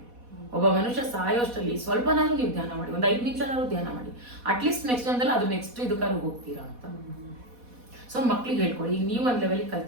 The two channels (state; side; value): late; left; 4.1 ms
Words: ಒಬ್ಬ ಮನುಷ್ಯ ಸಾಯೋಷ್ಟರಲ್ಲಿ ಸ್ವಲ್ಪನಾದ್ರೂ ನೀವು ಧ್ಯಾನ ಮಾಡಿ, 5 ನಿಮಿಷನಾದ್ರು ಧ್ಯಾನ ಮಾಡಿ. ಅಟ್ಲೀಸ್ಟ್ ನೆಕ್ಸ್ಟ್ ಜನ್ಮದಲ್ಲಿ ಅದು ನೆಕ್ಸ್ಟ್ ಇದಕ್ಕಾದ್ರು ಹೋಗ್ತೀರಾ ಅಂತ. ಸೊ ಮಕ್ಳಿಗೆ ಹೇಳ್ಕೊಳ್ಳಿ. ಈಗ ನೀವು ಒಂದು ಲೆವೆಲಿಗೆ